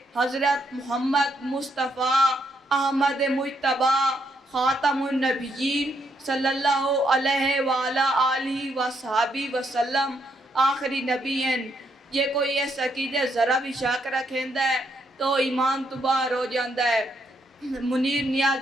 हज़रत मुहम्मद मुस्तफ़ा अहमद मुज्तबा खातमुन नबीयीन सल्लल्लाहु अलैहि व अला आलिहि व अस्हाबी वसल्लम आखिरी नबी हैं। जे कोई इस अकीदे ज़रा भी शक रखेंदा है तो ईमान तो बाहर हो जाता है। मुनीर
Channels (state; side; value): normal; both; correlation 0.76